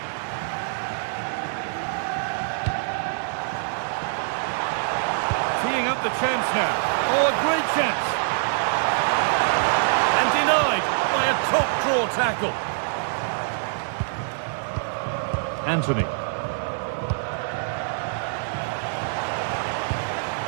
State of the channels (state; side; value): silent; left; digital silence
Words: Teeing up the chance now. Oh, a great chance. By a top draw tackle. Anthony.